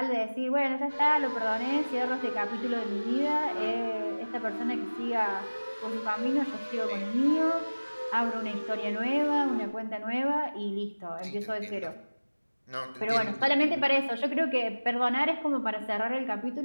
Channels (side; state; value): both; inverted; correlation -1.00